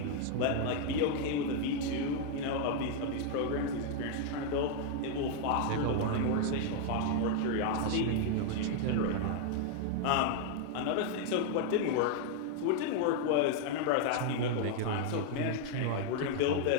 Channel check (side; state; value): both; different; correlation 0.00